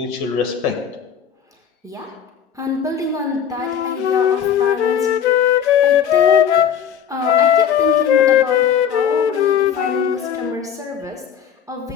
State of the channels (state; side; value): quieter; right; 8.4 dB